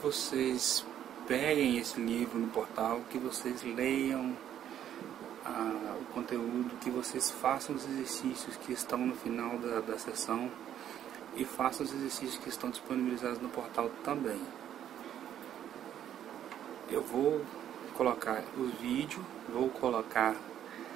peguem esse livro no portal, que vocês leiam o conteúdo, que vocês façam os exercícios que estão no final da sessão e façam os exercícios que estão disponibilizados no portal também. Eu vou colocar os vídeos, vou colocar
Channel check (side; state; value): left; quieter; 10.5 dB